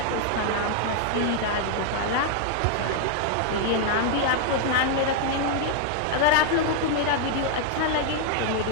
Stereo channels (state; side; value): different; both; correlation 0.00